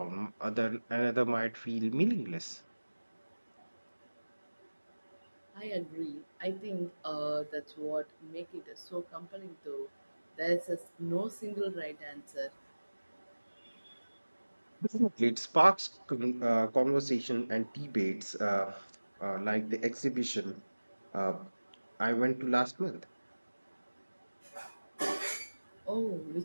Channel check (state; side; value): inverted; both; correlation -1.00